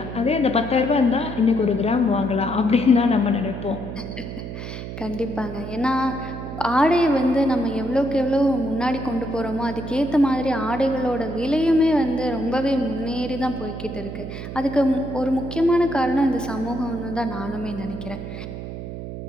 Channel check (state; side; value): noise; right; hum, 8 dB below the sound